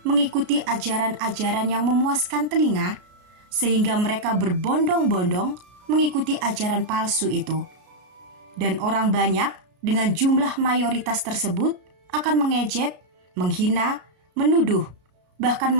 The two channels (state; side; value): late; left; 33 ms